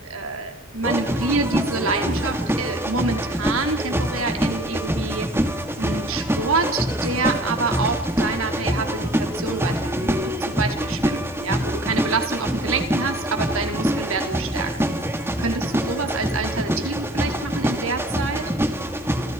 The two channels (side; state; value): both; normal; correlation 0.50